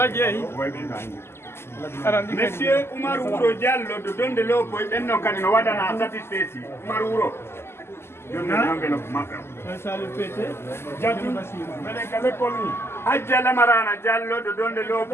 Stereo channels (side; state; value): right; late; 0.12 ms